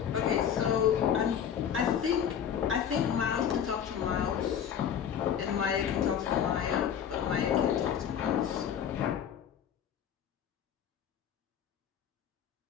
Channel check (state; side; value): quieter; right; 8.7 dB